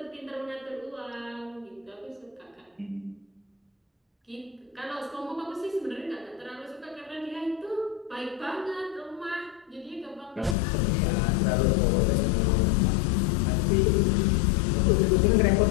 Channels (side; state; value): right; drops out; at 10.6 s